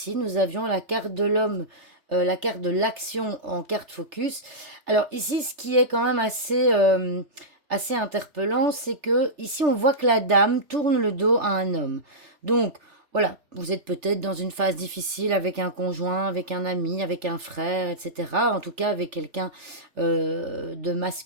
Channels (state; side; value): late; left; 3.3 ms